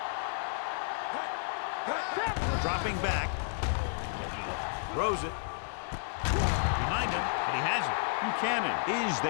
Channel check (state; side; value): silent; right; digital silence